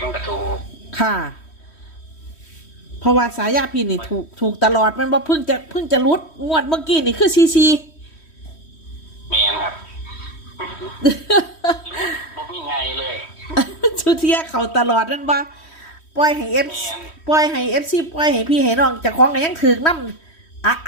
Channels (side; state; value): right; late; 3.1 ms